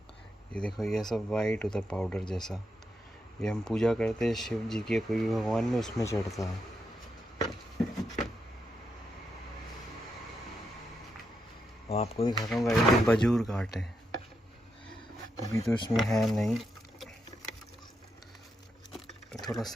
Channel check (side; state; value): both; normal; correlation 0.83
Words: ये देखो, ये सब वाइट होता है पाउडर जैसा। ये हम पूजा करते हैं शिव जी के, कोई भी भगवान में, उसमें चढ़ता है। और आपको दिखाता हूँ गाइस, ये बजूर घाट है। अभी तो इसमें है नहीं। थोड़ा